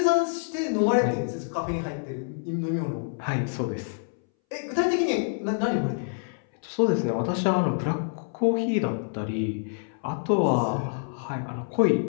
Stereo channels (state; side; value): silent; right; 60 dB below the other